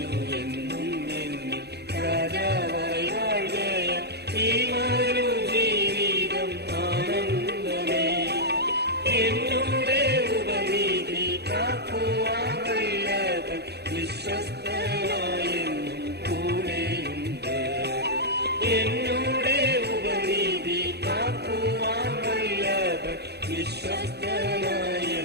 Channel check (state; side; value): late; left; 0.48 ms